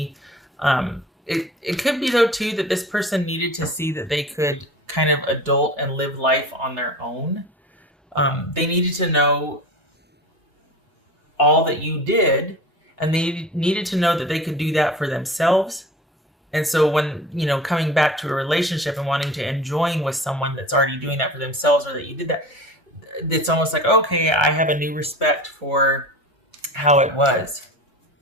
It could be, though, too, that this person needed to see that they could kind of adult and live life on their own. They needed to know all that you did, and they needed to know that they could do that for themselves. And so when, coming back to a relationship and wanting to enjoying with someone that's already doing that for themselves, or that you did that, it's almost like, okay, I have a new respect for how it was.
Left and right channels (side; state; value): both; normal; correlation 0.36